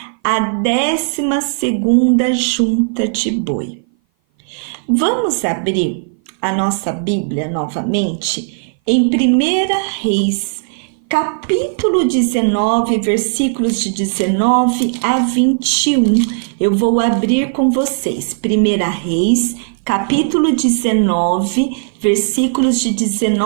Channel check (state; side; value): silent; left; 57 dB below the other